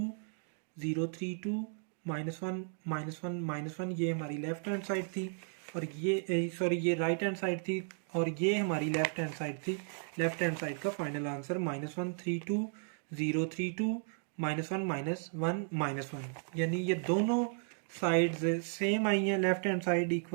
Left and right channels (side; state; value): left; silent; 55 dB below the other